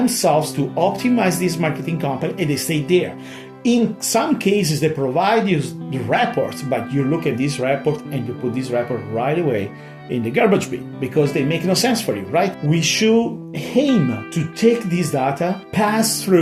to optimize this marketing company and they stay there. In some cases, they provide you the reports, but you look at this report and you put this report right away in the garbage bin because they make no sense for you, right? We should aim to take this data, pass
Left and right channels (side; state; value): both; identical; correlation 1.00